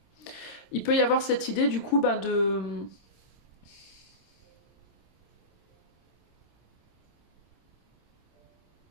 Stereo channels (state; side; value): late; right; 26 ms